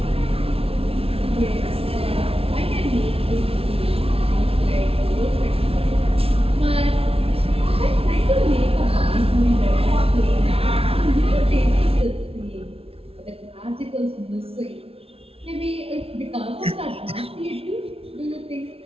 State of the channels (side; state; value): left; late; 0.28 ms